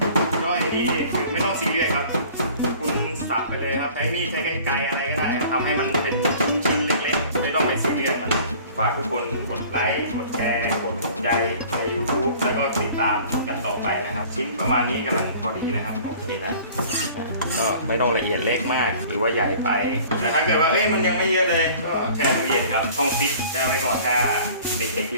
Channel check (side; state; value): both; inverted; correlation -0.48